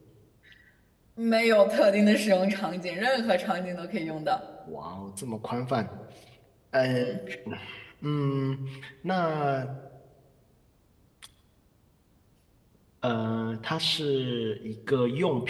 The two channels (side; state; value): both; identical; correlation 1.00